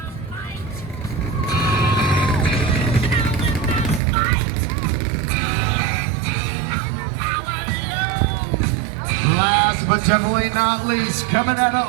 But definitely not least, coming out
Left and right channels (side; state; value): left; drops out; at 4.0 s